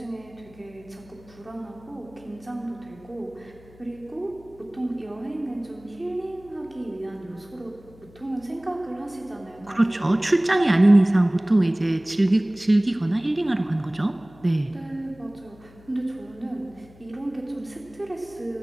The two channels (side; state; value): left; noise; hum, 24 dB below the sound